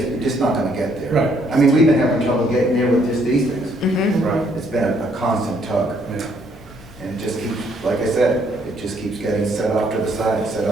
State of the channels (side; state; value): both; normal; correlation 0.68